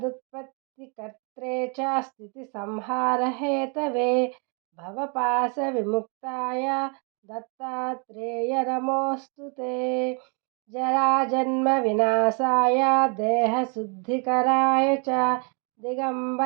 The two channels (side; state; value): left; quieter; 35.8 dB